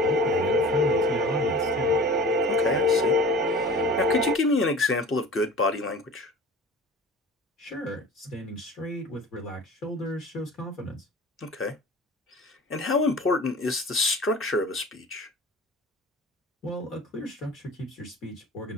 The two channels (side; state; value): both; normal; correlation 0.40